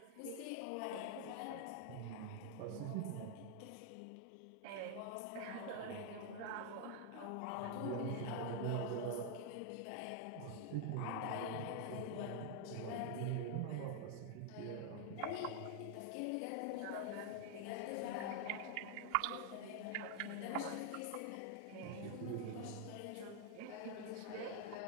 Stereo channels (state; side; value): different; both; correlation 0.00